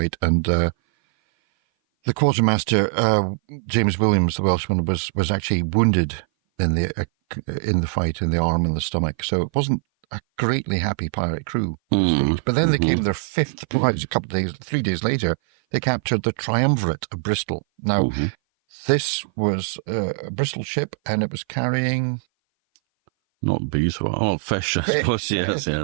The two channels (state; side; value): silent; left; 58 dB below the other